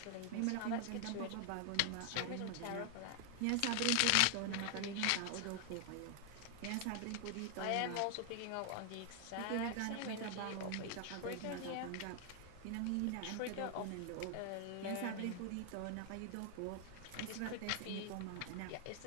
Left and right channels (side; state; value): both; different; correlation 0.00